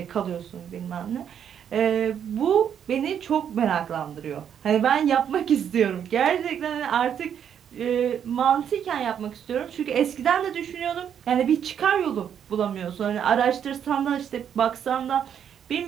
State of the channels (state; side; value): quieter; left; 8.7 dB